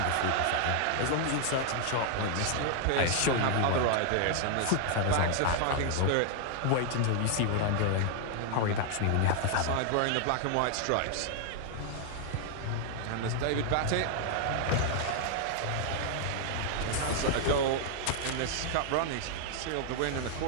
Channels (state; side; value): different; both; correlation 0.00